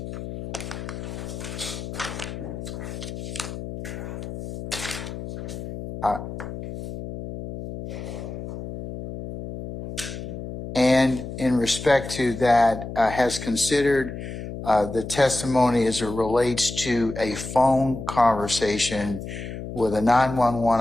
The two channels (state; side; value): noise; left; hum, 8 dB below the sound